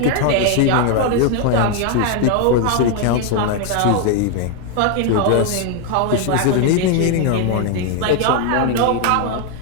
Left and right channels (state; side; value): different; both; correlation 0.01